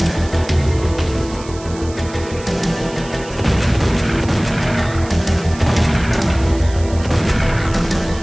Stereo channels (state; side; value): noise; right; hiss, 18 dB below the sound